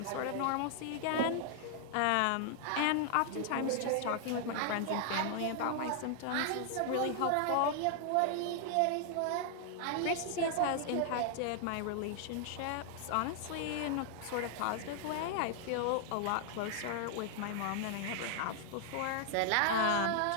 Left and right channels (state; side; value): different; both; correlation 0.00